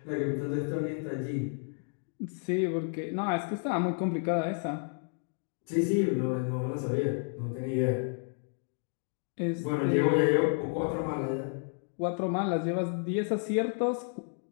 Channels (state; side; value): silent; right; 57 dB below the other